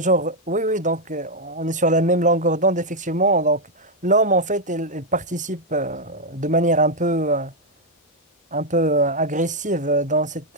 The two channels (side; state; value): both; normal; correlation -0.01